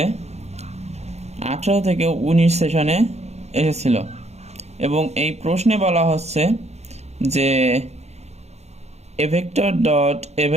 18 থেকে 19 সেশনে এসেছিল এবং এই প্রশ্নে বলা হচ্ছে যে এ ভেক্টর ডট এ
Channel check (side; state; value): left; late; 0.31 ms